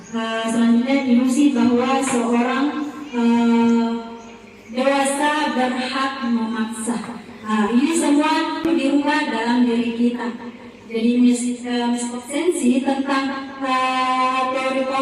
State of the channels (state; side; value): identical; both; correlation 1.00